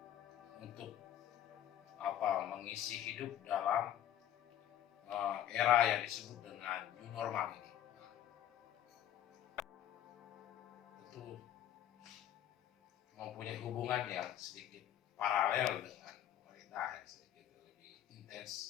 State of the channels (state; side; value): quieter; right; 11.4 dB